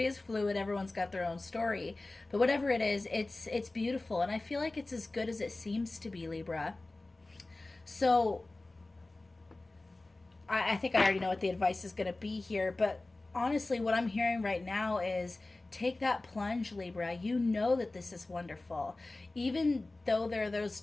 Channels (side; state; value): right; quieter; 3.0 dB